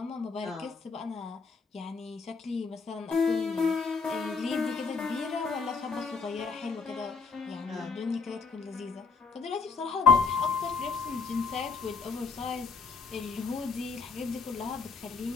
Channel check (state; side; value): quieter; right; 4.9 dB